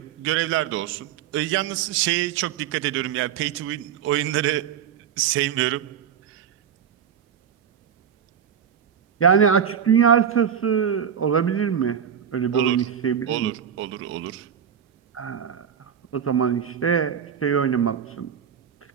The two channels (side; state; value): left; quieter; 8.4 dB